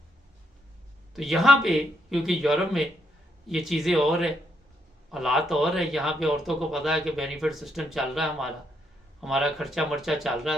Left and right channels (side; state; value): both; normal; correlation 0.76